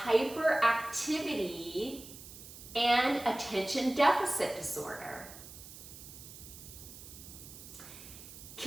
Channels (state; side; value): noise; right; hiss, 15 dB below the sound